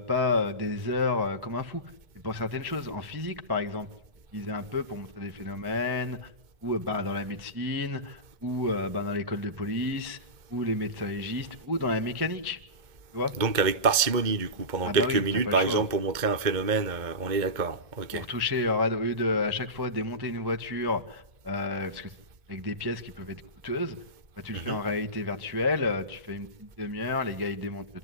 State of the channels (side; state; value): left; late; 2.2 ms